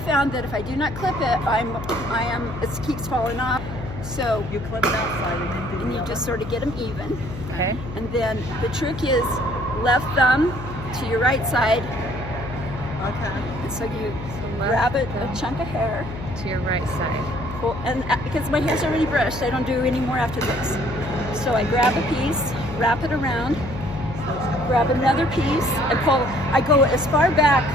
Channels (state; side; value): noise; left; hum, 10 dB below the sound